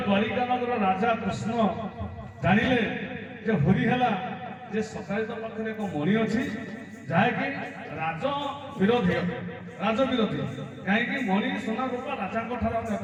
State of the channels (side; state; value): both; identical; correlation 1.00